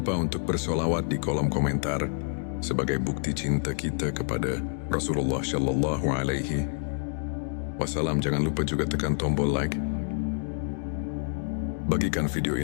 untuk bersolawat di kolom komentar sebagai bukti cinta kita kepada Rasulullah Shallallahu Alaihi Wasallam. Jangan lupa juga tekan tombol like. Bagikan video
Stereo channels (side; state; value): right; silent; digital silence